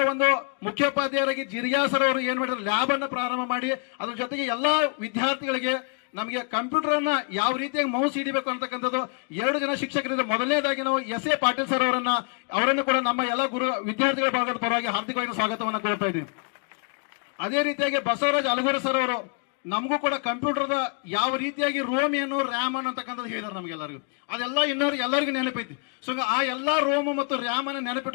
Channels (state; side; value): quieter; right; 37.6 dB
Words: ಒಂದು ಮುಖ್ಯೋಪಾಧ್ಯಾಯರಾಗಿ ಜಿರಿಯಾ ಸರ್ ಅವರು ಏನ್ ಮಾಡಿದ್ರು, ಲ್ಯಾಬ್ ಅನ್ನ ಪ್ರಾರಂಭ ಮಾಡಿ ಅದ್ರ ಜೊತೆಗೆ ಎಲ್ಲಾ ವಿದ್ಯಾರ್ಥಿಗಳಿಗೆ ನಮಗೆ ಕಂಪ್ಯೂಟರ್ ಅನ್ನ ಯಾವ ರೀತಿಯಾಗಿ ಮೌಸ್ ಹಿಡಿಬೇಕು ಅಂತಕ್ಕಂಥದ್ದು 2 ಜನ ಶಿಕ್ಷಕರಿಂದ. ಮೊದಲನೇದಾಗಿ ನಾವು SA ಪಾಟೀಲ್ ಸರ್ ಅವರನ್ನು ಕೂಡ ನಮ್ಮ ಎಲ್ಲ ವಿದ್ಯಾರ್ಥಿಗಳ ಭಾಗದ ಪರವಾಗಿ ಹಾರ್ದಿಕವಾಗಿ ಸ್ವಾಗತವನ್ನು ಕೋರ್ತಾ ಇದ್ದೀನಿ. ಅದೇ ರೀತಿಯಾಗಿ ಬಸವರಾಜ್ ಅಲಗೂರು ಸರ್ ಅವರು ನಮಗೂ ಕೂಡ ಕಂಪ್ಯೂಟರ್ದ ಯಾವ ರೀತಿಯಾಗಿ ರೋಮ್ ಏನು ರ್ಯಾಮ್ ಅನ್ನತಕ್ಕಂಥದ್ದು ಹೇಳಿದಾರೆ ನಮಗೆಲ್ಲರಿಗೂ. ಅದೆಲ್ಲ ಎಲ್ಲರಿಗೂ ನೆನಪೈತಿ. ಸೊ ಆ ಎಲ್ಲಾ ರೋಮ್ ಮತ್ತು ರ್ಯಾಮ್ ಅನ್ನು